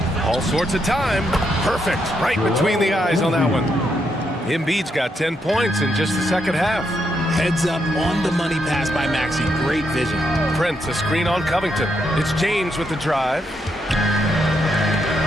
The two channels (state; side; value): normal; both; correlation 0.79